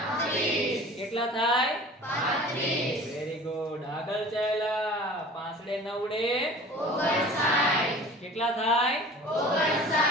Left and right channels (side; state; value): both; normal; correlation 0.43